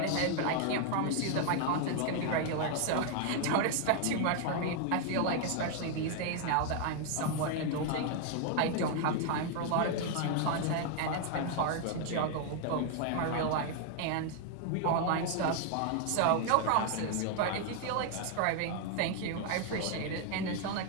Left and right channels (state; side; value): different; both; correlation 0.00